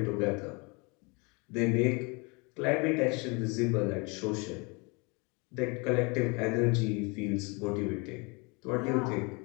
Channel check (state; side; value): quieter; right; 29.8 dB